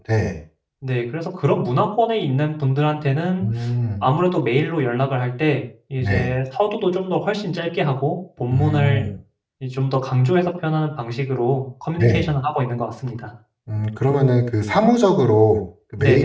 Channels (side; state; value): both; identical; correlation 1.00